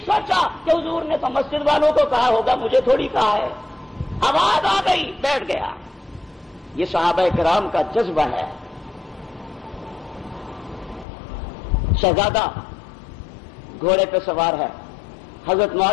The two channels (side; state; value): right; drops out; at 11.1 s